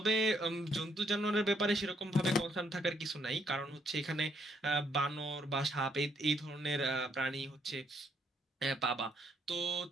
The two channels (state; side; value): normal; both; correlation 0.71